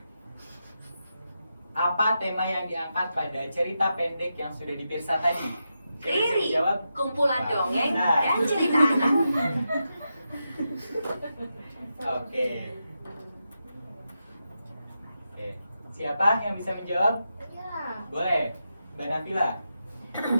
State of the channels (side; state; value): both; inverted; correlation -0.87